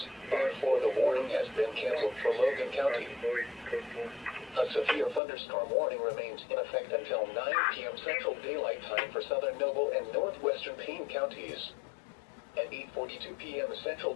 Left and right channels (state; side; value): drops out; right; at 5.2 s